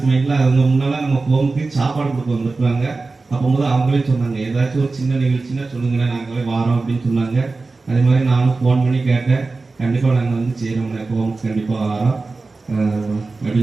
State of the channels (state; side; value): quieter; left; 3.7 dB